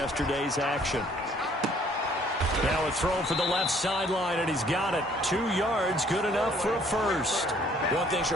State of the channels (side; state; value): both; normal; correlation 0.61